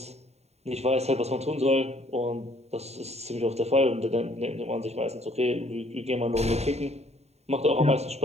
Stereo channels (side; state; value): left; late; 0.31 ms